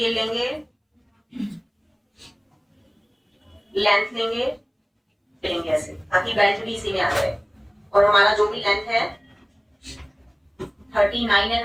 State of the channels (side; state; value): both; identical; correlation 1.00